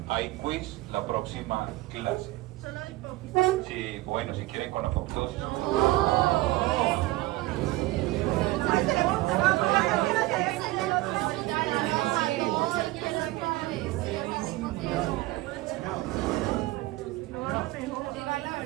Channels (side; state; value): left; quieter; 19.0 dB